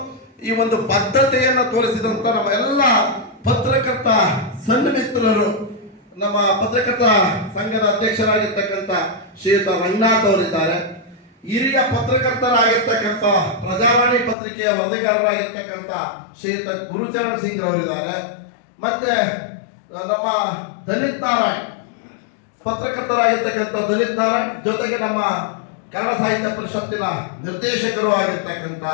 ಈ ಒಂದು ಬದ್ಧತೆಯನ್ನು ತೋರಿಸಿದಂತ ನಮ್ಮ ಎಲ್ಲ ಪತ್ರಕರ್ತ ಸನ್ಮಿತ್ರರು, ನಮ್ಮ ಪತ್ರಕರ್ತ ಸಂಘದ ಅಧ್ಯಕ್ಷರಾಗಿರ್ತಕ್ಕಂಥ ಶ್ರೀಯುತ ರಂಗನಾಥ್ ಅವರಿದ್ದಾರೆ. ಹಿರಿಯ ಪತ್ರಕರ್ತರಾಗಿರ್ತಕ್ಕಂಥ ಪ್ರಜಾವಾಣಿ ಪತ್ರಿಕೆಯ ವರದಿಗಾರರಾಗಿರ್ತಕ್ಕಂಥ ಶ್ರೀಯುತ ಗುರುಚರಣ್ ಸಿಂಗ್ ಅವರಿದ್ದಾರೆ. ಮತ್ತೆ ನಮ್ಮ ದಲಿತ್ ನಾರಾಯಣ್ ಪತ್ರಕರ್ತರಾಗಿರ್ತಕ್ಕಂಥ ದಲಿತ್ ನಾರಾಯಣ್ ಜೊತೆಗೆ ನಮ್ಮ ಕನ್ನಡ ಸಾಹಿತ್ಯ ಪರಿಷತ್ತಿನ ನಿರ್ದೇಶಕರು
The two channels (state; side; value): drops out; right; at 14.4 s